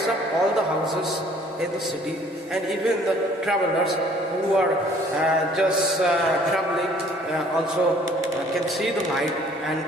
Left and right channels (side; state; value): both; normal; correlation 0.57